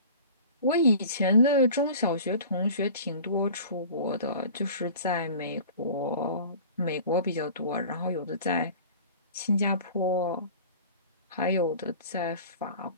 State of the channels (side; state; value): both; inverted; correlation -0.42